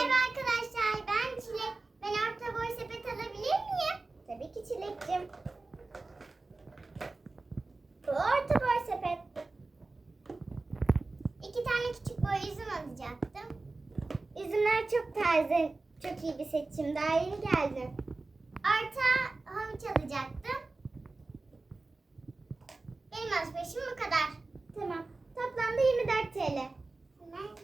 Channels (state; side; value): quieter; left; 3.4 dB